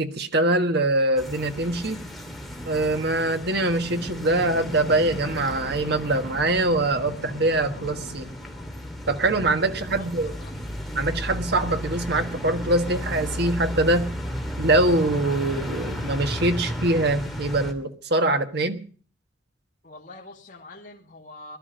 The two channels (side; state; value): both; normal; correlation 0.16